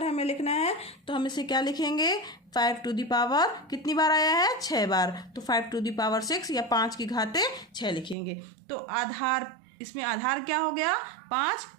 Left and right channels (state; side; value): drops out; left; at 8.2 s